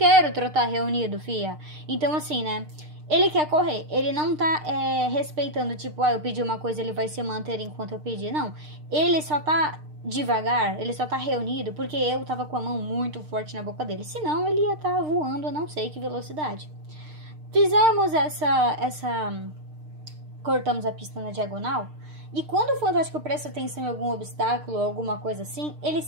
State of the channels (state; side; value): late; left; 6.6 ms